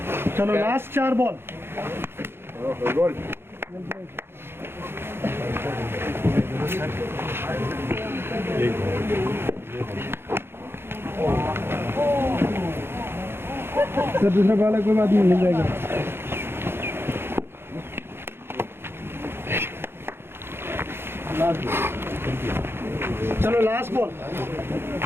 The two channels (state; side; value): late; left; 0.11 ms